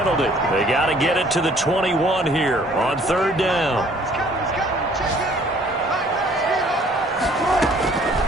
They got to get it to the 21 here on 3rd down.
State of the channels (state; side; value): normal; both; correlation 0.58